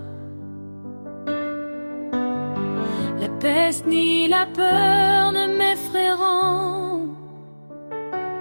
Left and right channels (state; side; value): inverted; both; correlation -1.00